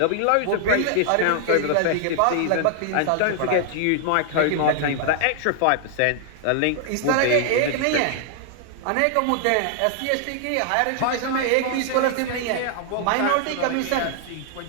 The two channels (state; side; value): different; both; correlation 0.00